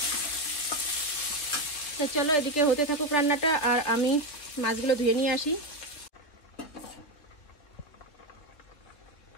তো চলো এদিকে হতে থাকুক রান্নাটা, আর আমি মাছগুলো ধুয়ে নিয়ে আসি।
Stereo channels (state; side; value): late; right; 3.3 ms